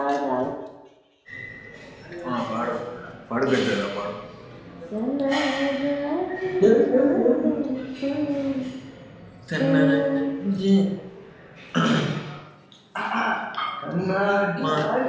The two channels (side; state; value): both; identical; correlation 1.00